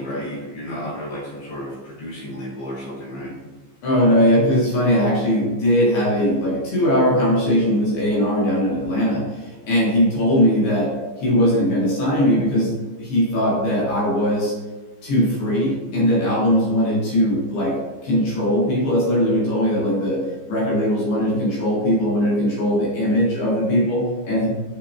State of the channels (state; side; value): late; right; 15 ms